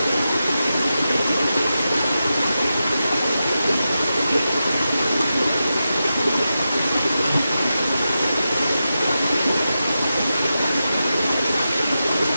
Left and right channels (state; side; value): inverted; both; correlation -0.91